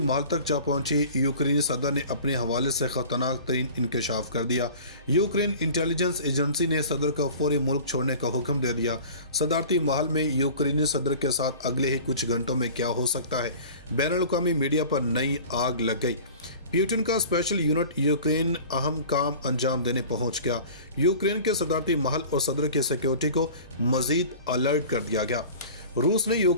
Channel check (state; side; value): inverted; both; correlation -0.42